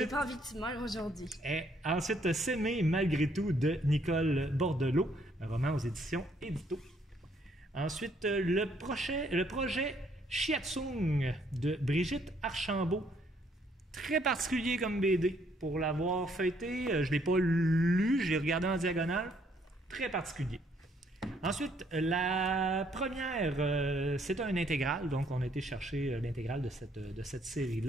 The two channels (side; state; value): both; normal; correlation 0.68